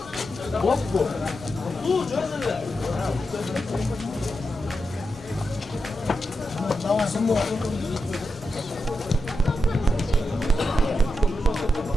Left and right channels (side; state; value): both; normal; correlation 0.87